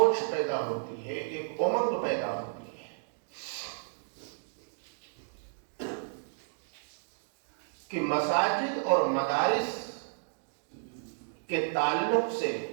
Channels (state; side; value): silent; left; digital silence